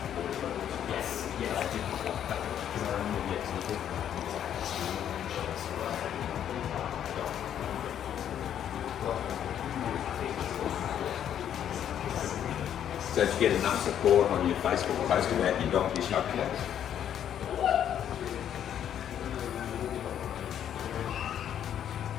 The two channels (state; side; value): quieter; right; 9.8 dB